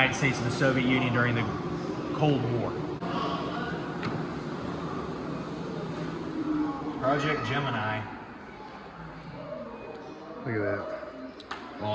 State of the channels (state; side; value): identical; both; correlation 1.00